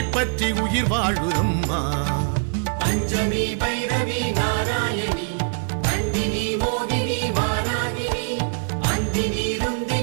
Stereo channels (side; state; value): left; silent; 63 dB below the other